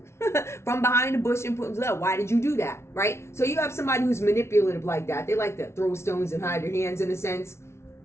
from behind the bush and put them up. Why did you do that? Right? So you have somebody who's manipulative like that. They like to throw stones and hide their hands in a sense.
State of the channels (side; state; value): right; late; 0.13 ms